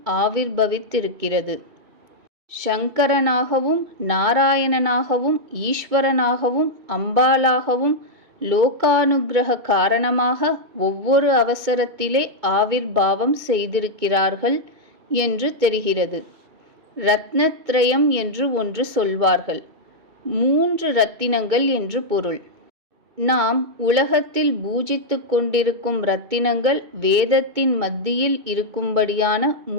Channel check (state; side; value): late; left; 2.3 ms